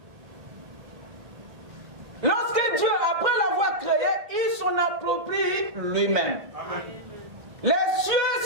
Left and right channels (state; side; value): late; left; 1.7 ms